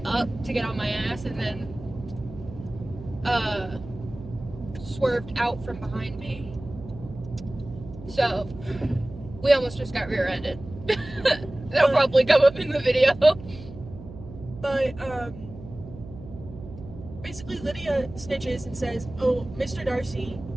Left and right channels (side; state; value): right; noise; hum, 14 dB below the sound